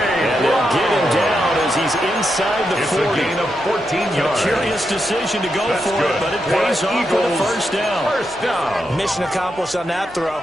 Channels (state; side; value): noise; right; rumble, 24 dB below the sound